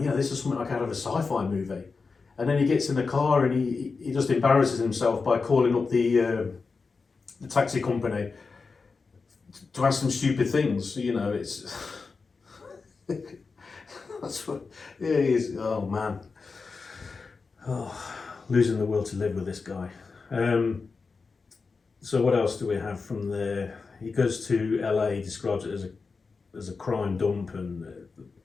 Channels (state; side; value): quieter; right; 4.6 dB